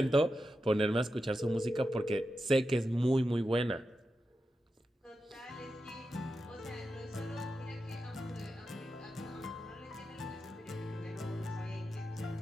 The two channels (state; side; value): normal; both; correlation 0.89